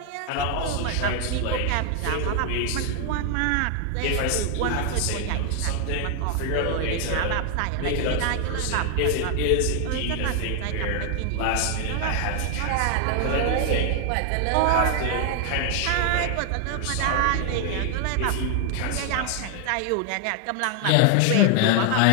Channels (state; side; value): different; both; correlation 0.00